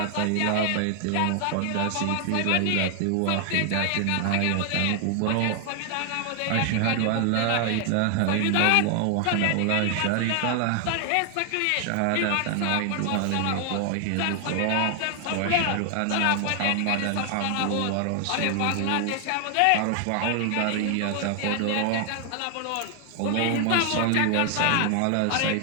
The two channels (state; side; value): different; both; correlation 0.00